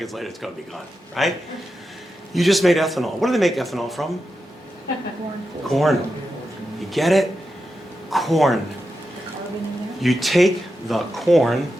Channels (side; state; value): both; normal; correlation 0.89